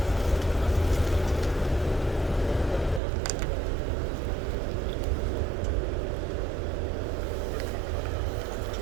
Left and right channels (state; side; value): drops out; left; at 3.0 s